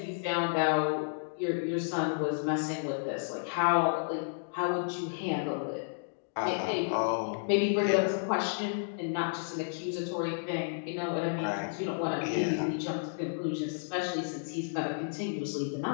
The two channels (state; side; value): silent; right; digital silence